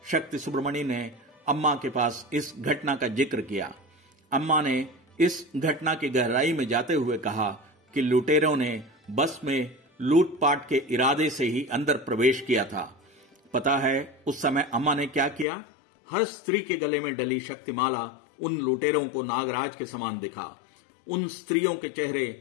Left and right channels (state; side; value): drops out; right; at 15.5 s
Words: शक्ति सुब्रमण्य ने अम्मा के पास इस घटना का जिक्र किया। अम्मा ने इस घटना की गहराई में जाते हुए कहा कि लुटेरों ने बस में लूटपाट के इरादे से ही अंदर प्रवेश किया था। पता है उस समय अम्मा ने क्या किया? हर स्त्री के गले में डली शक्तिमाला उन लुटेरों को नागराज के समान दिखा। उन स्त्रियों के